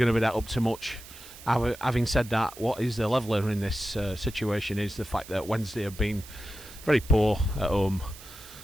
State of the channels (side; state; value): right; noise; hiss, 17 dB below the sound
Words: to be that up to much. Having said that, what is the leveller in this situation is the fact that Wednesday have been very poor at home.